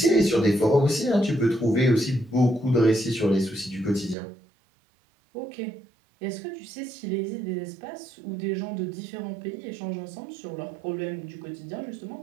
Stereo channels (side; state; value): left; drops out; at 4.2 s